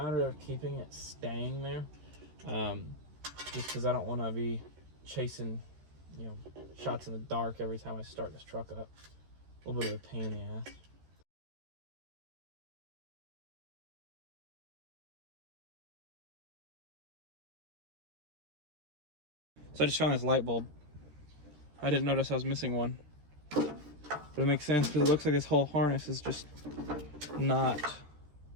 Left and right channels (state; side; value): late; left; 13 ms